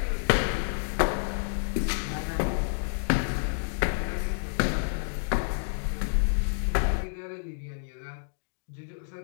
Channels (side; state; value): right; silent; digital silence